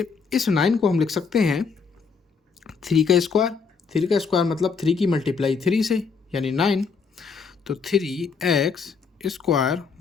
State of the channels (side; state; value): right; quieter; 5.3 dB